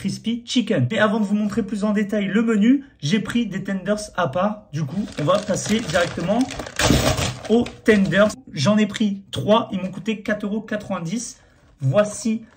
chicken. Mais avant de vous montrer plus en détail le menu, j'ai pris des tenders à part. Du coup, on va passer directement aux tenders. J'en ai pris 3, ils m'ont coûté 4,90 €. Voici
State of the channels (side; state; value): both; identical; correlation 1.00